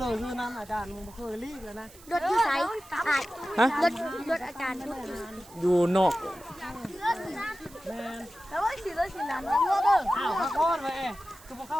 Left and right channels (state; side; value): noise; right; hiss, 22 dB below the sound